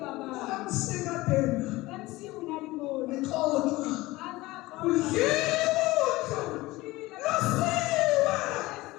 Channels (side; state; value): right; quieter; 19.7 dB